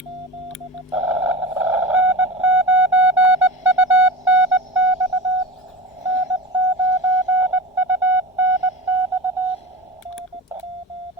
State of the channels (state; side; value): normal; both; correlation 0.30